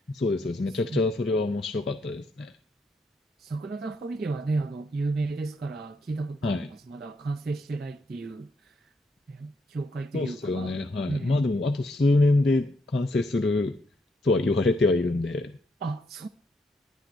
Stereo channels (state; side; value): normal; both; correlation 0.76